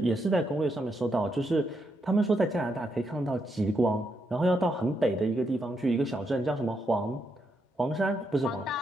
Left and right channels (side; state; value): both; normal; correlation 0.80